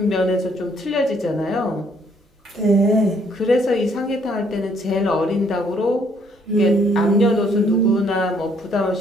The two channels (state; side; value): normal; both; correlation 0.66